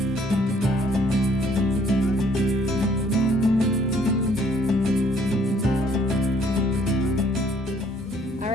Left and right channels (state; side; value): normal; both; correlation 0.62